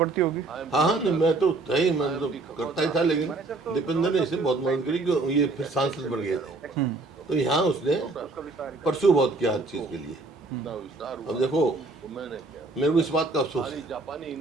होगी। हाँ हाँ, नहीं मैं तो मैं तो करता ही था, लेकिन दीपेंद्र ने इसे बहुत मदद करी कि ये फिर सांसद बन गए थे, तो यहाँ उसने परसू बहुत किया हर चीज़ के लिए। अब देखो, मैंने क्या मेरे को इस बात का अफसोस है, जापानी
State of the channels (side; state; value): left; quieter; 3.4 dB